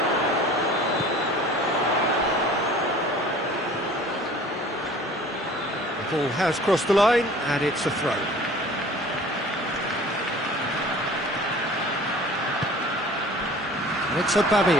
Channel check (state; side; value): normal; both; correlation 0.46